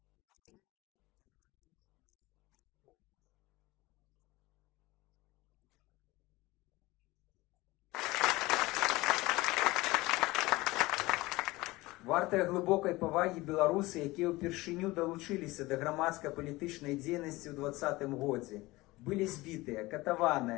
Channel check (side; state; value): right; quieter; 20.5 dB